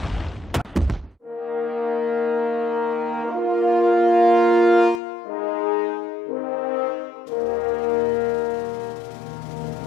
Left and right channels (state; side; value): drops out; right; at 5.0 s